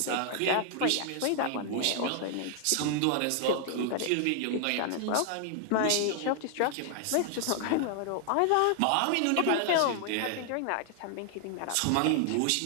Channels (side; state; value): both; different; correlation 0.00